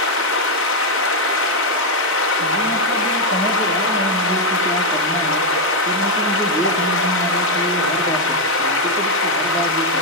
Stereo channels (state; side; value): normal; both; correlation 0.02